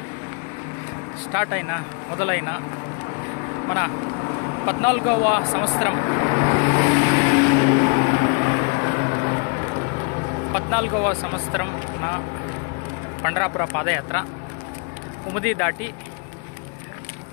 స్టార్ట్ అయిన మొదలైన మన 14వ సంవత్సరం 14వ సంవత్సరం నా పండరాపుర పాదయాత్ర ఉమది దాటి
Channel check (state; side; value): quieter; right; 36.6 dB